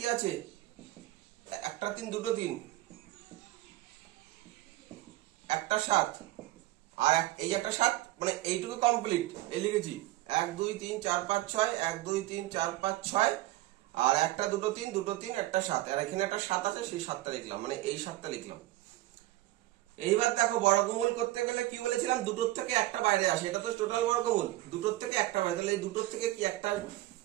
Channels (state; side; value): quieter; left; 16.8 dB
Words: আছে, একটা 3 দুটো 3 একটা 7 আর এই একটা 7, মানে এইটুকু কমপ্লিট। এই লিখেছি 1 2 3 4 5 6 1 2 3 4 5 6 আর একটা দুটো 3 দুটো 3 একটা 7, আর এখানে একটা 7 আছে সেই 7টা লিখলাম, মানে এই 7টা লিখলাম। এইবার দেখো বর্গমূল করতে গেলে কি বলেছিলাম, দুটোর থেকে একটা বাইরে আসে, এটা তো টোটাল বর্গমূল, দুটোর থেকে একটা বাইরে, তাহলে এই দুটোর থেকে কি একটা আসবে,